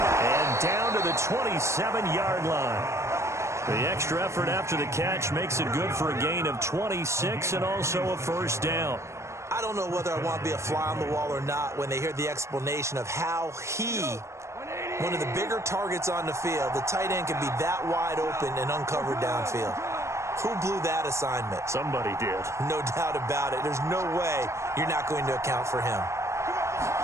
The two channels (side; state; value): left; late; 0.14 ms